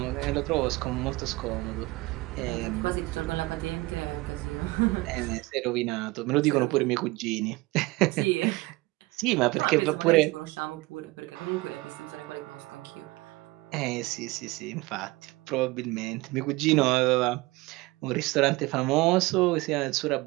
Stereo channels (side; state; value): left; quieter; 21.6 dB